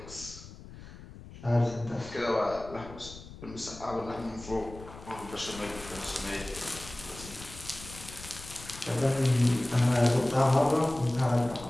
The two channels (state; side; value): noise; left; rumble, 16 dB below the sound